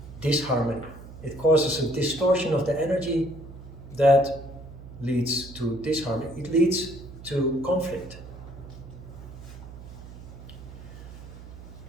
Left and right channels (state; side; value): noise; right; hum, 15 dB below the sound